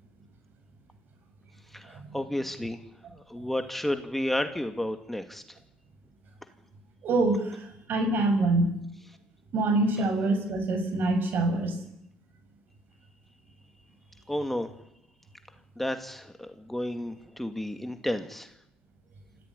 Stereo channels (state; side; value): normal; both; correlation 0.67